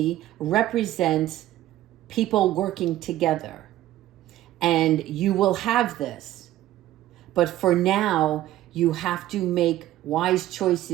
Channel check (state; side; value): quieter; left; 14.2 dB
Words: represents people working together. And you will have this. But for now, you have to make wise